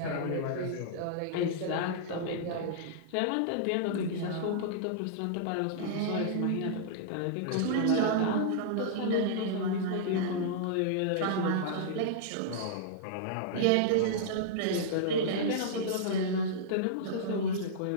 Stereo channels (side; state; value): both; different; correlation -0.02